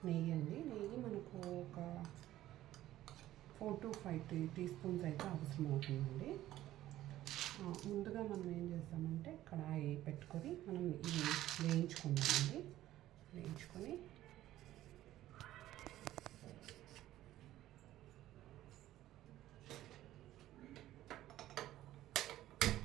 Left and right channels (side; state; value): left; quieter; 14.2 dB